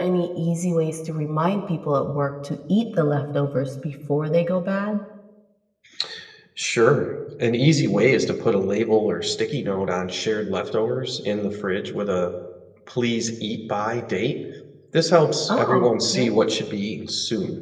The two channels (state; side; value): identical; both; correlation 1.00